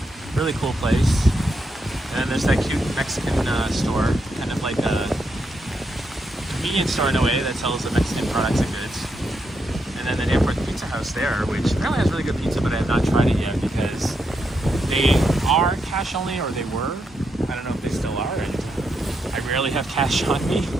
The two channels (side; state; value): both; normal; correlation 0.82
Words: Really cool place. And then there's that cute Mexican store, kind of like a convenience store in a way that sells the Mexican products and goods. And then the Danforth Pizza House there, which apparently has really good pizza, but I have not tried it yet because they are cash only, or they were. I don't know if they still are, and I rarely have cash on me.